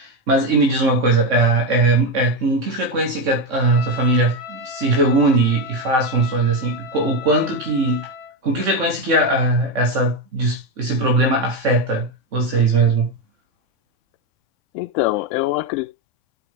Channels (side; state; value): left; late; 3.6 ms